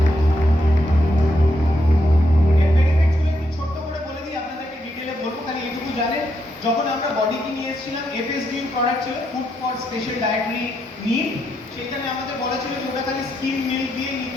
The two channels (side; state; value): both; normal; correlation 0.79